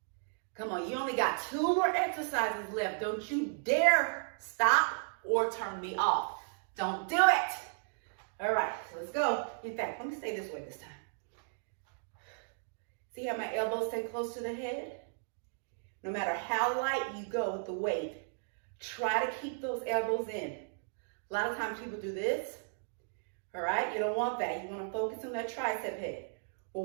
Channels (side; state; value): left; silent; digital silence